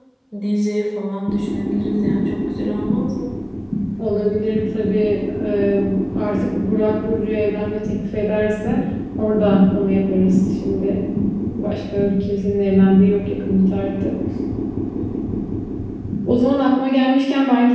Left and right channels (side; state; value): both; identical; correlation 1.00